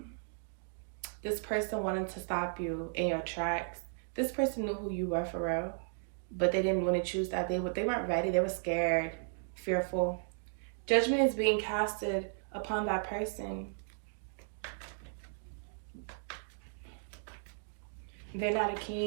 person wanted to stop you in your tracks. This person knew who you were for real, but they didn't want to choose that. They weren't ready. They were scared, fearful. Judgment is being casted upon that person. They're not a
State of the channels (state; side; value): silent; left; digital silence